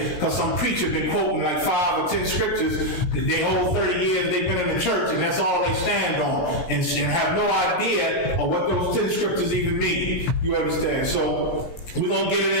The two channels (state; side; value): late; right; 17 ms